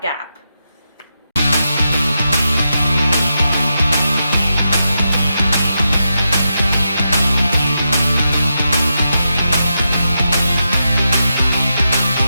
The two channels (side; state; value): both; inverted; correlation -0.86